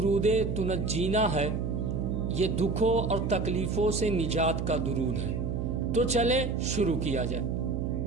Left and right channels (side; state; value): right; noise; hum, 2 dB below the sound